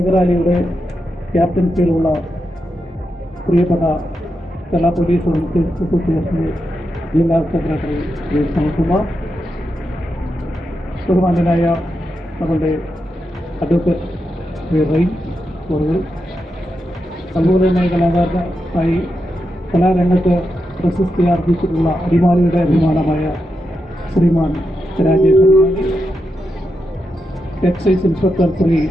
റാലിയുടെ ക്യാപ്റ്റൻസിയിലുള്ള പ്രിയപ്പെട്ട കേരള പോലീസ് അസോസിയേഷൻ്റെ ജില്ലാ സെക്രട്ടറി ശ്രീ സനൽകുമാർ, ബഹുമാന്യനായ നമ്മളുടെ അഡ്വക്കേറ്റ് ശ്രീ റെയിൻ കോറുകൾ, അതുപോലെ തന്നെ കലാകാരനായി കലാരംഗത്ത് പ്രശസ്തി ആർജിച്ചിട്ടുള്ള അടിമാലിയുടെ അഭിമാനമായ ശ്രീമാൻ രാജേഷ്, എക്സൈസ് ഇൻസ്പെക്ടർ ശ്രീ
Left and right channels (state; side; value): normal; both; correlation 0.86